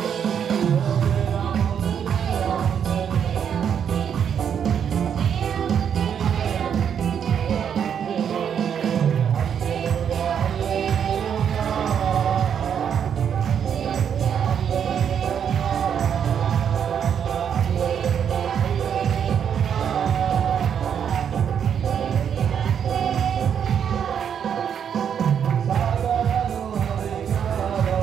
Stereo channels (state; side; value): quieter; left; 8.2 dB